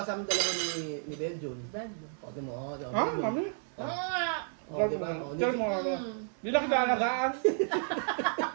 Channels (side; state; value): left; silent; digital silence